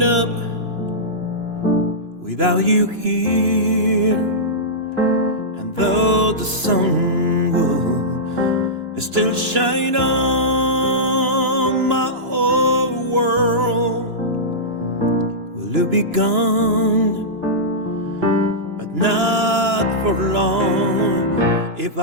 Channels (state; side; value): late; left; 2.9 ms